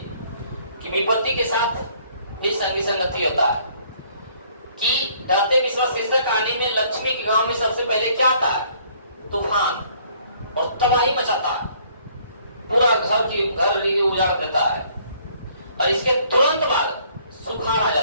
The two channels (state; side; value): inverted; both; correlation -0.61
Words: कि विपत्ति के साथ भी संगी संगति होता है कि दाते विश्वास शीर्षक कहानी में लक्ष्मी के गांव में सबसे पहले क्या आता है? तूफान, और तबाही मचाता है, पूरा घर उजाड़ देता है। और इसके तुरंत बाद सुखाड़ आ